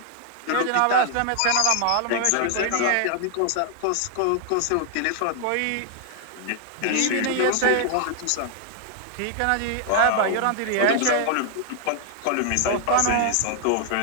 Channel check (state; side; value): different; both; correlation 0.00